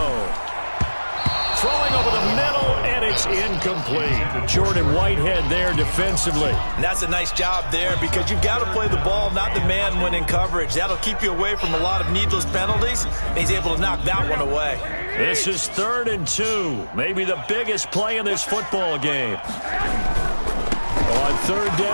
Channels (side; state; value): both; inverted; correlation -1.00